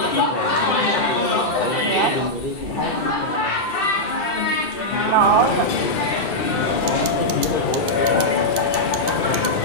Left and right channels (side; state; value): right; late; 1.5 ms